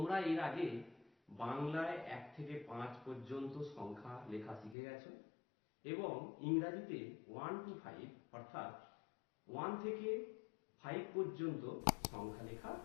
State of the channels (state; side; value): drops out; right; at 4.8 s